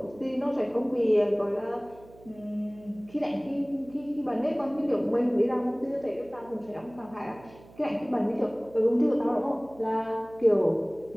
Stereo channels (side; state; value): right; noise; hum, 23 dB below the sound